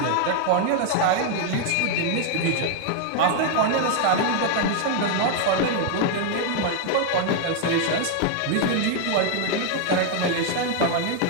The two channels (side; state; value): both; different; correlation 0.00